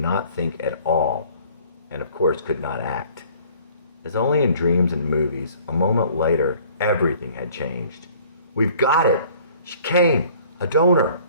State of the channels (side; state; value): both; inverted; correlation -0.53